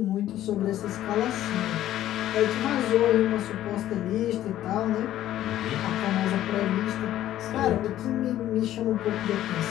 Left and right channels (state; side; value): quieter; right; 12.9 dB